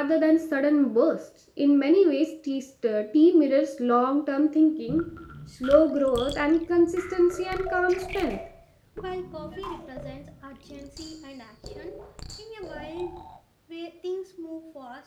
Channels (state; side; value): identical; both; correlation 1.00